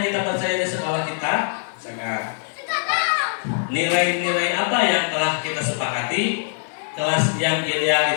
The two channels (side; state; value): right; silent; digital silence